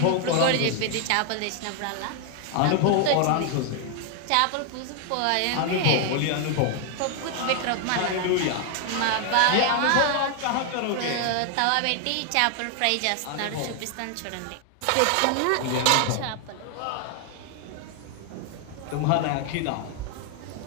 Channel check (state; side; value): different; both; correlation 0.00